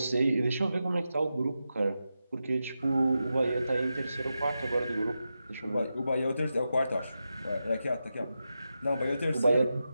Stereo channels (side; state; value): both; inverted; correlation -0.89